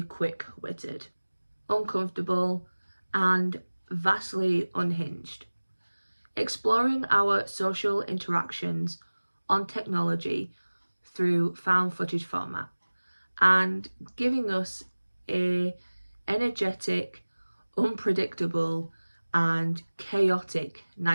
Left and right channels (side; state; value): both; inverted; correlation -1.00